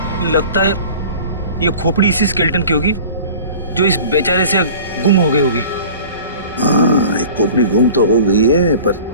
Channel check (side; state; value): both; inverted; correlation -0.42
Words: लगता है ये खोपड़ी इसी स्केलेटन की होगी जो इस बेचारे से गुम हो गई होगी। हाँ, एक खोपड़ी गुम तो हो गई है, पर